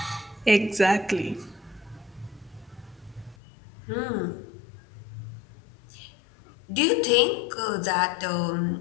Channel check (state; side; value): drops out; right; at 3.4 s